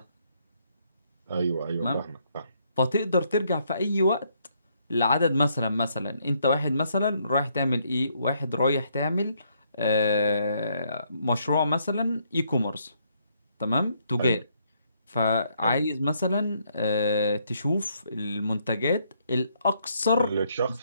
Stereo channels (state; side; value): inverted; both; correlation -0.72